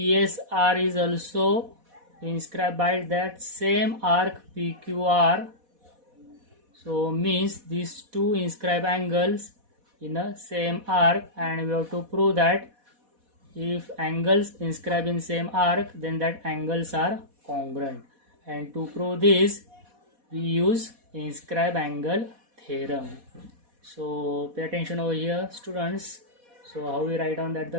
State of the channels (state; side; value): late; left; 4.1 ms